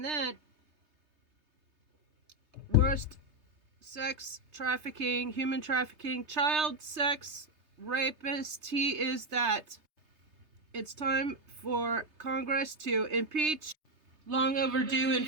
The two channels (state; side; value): late; left; 3.3 ms